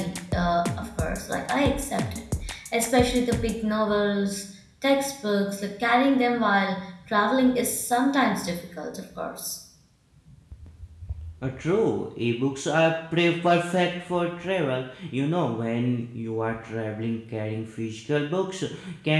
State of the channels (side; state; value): both; identical; correlation 1.00